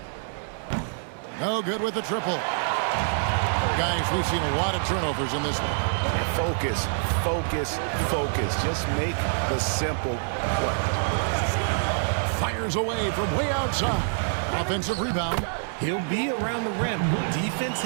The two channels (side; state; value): left; silent; digital silence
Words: No good with the triple. Guys, we've seen a lot of turnovers in this one. Focus, focus, focus. Just make the simple play. Fires away from way outside. Offensive rebound. He'll be around the rim. Defense